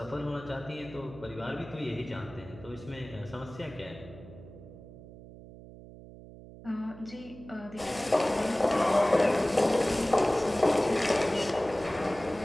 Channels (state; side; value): noise; right; hum, 17 dB below the sound